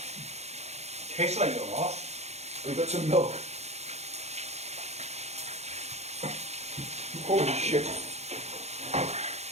tastes like a lot. we've got some milk. Holy shit.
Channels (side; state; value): left; late; 0.31 ms